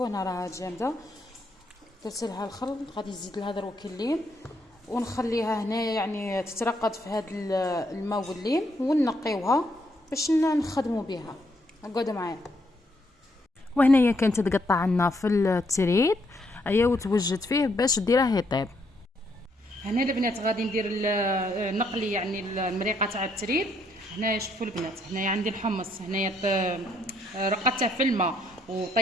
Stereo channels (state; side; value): normal; both; correlation 0.73